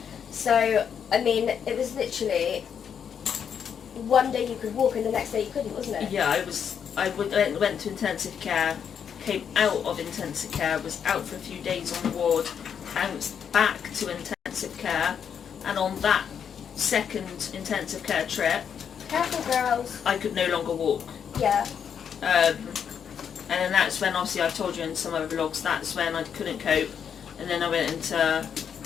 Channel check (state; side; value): quieter; right; 7.7 dB